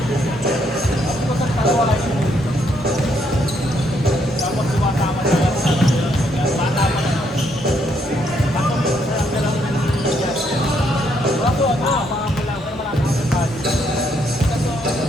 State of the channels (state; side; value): normal; both; correlation 0.73